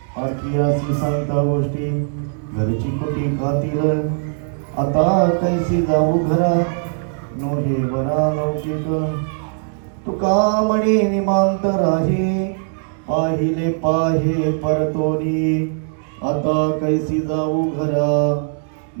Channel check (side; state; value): left; silent; digital silence